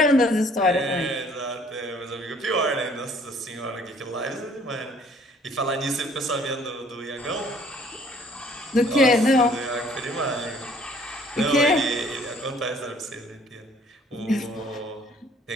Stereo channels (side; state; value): both; normal; correlation 0.58